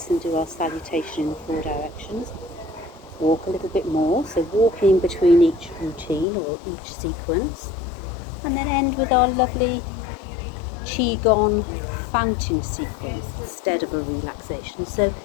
and do our salutation in 4 directions. Walk a little bit more, so walking between each routine or each sequence. And then end with our lovely qigong fountain sequence instead of a relaxation. So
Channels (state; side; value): drops out; right; at 6.2 s